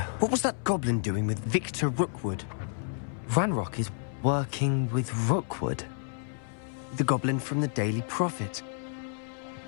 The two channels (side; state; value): right; silent; 58 dB below the other